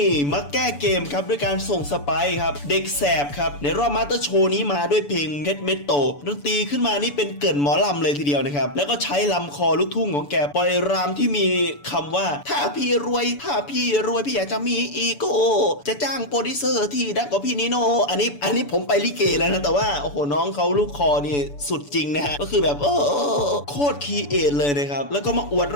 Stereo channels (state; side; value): late; right; 6.9 ms